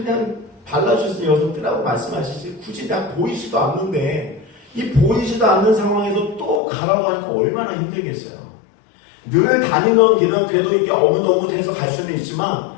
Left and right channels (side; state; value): right; drops out; at 6.6 s